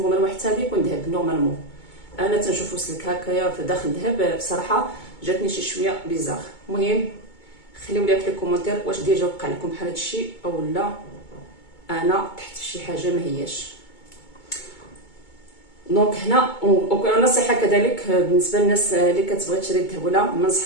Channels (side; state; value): right; late; 2.2 ms